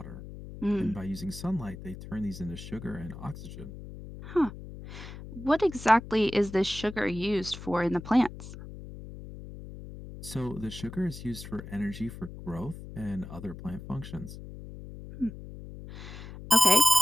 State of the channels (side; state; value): left; noise; hum, 12 dB below the sound